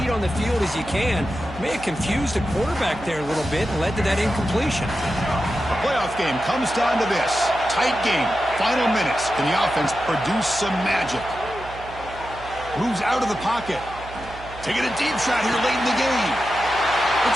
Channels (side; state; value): right; noise; hum, 15 dB below the sound